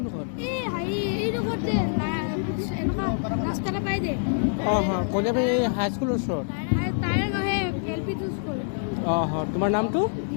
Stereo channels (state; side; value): silent; right; 61 dB below the other